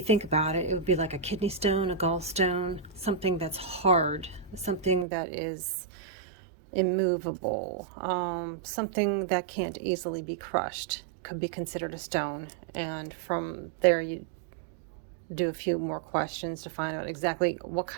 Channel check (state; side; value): drops out; left; at 5.1 s